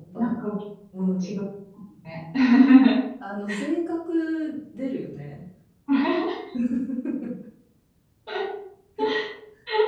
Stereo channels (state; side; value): identical; both; correlation 1.00